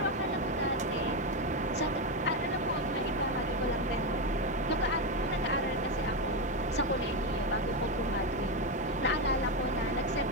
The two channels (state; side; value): normal; both; correlation 0.09